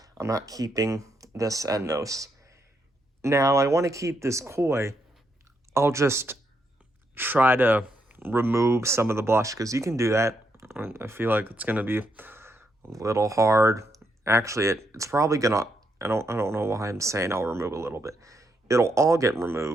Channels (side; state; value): both; normal; correlation 0.78